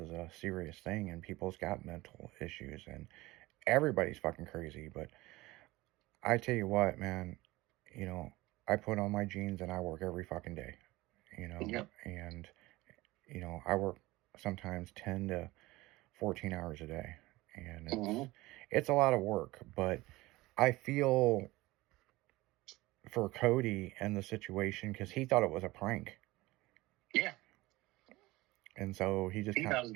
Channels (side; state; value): left; quieter; 19.8 dB